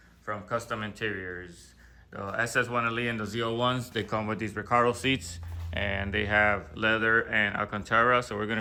from Kustom Interiors. The SS 1LE and the ZL1s, they come with these Recaro seats and they have leather and Alcantara. So we're going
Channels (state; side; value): identical; both; correlation 1.00